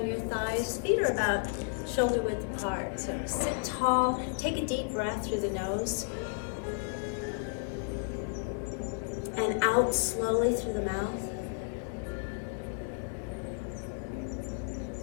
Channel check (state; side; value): silent; right; 56 dB below the other